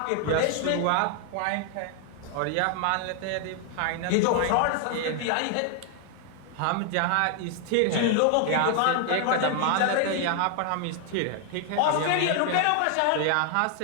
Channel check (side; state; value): both; different; correlation 0.00